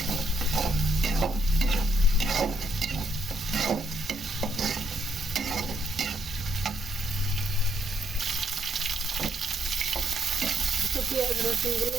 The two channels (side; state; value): both; normal; correlation 0.73